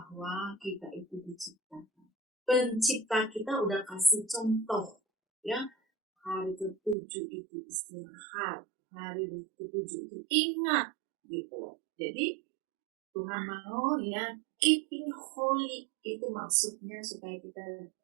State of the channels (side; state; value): left; drops out; at 7.0 s